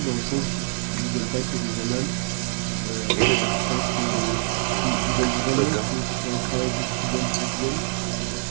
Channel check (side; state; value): left; quieter; 37.7 dB